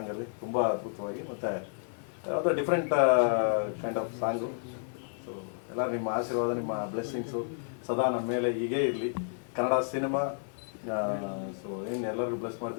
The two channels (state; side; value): silent; right; digital silence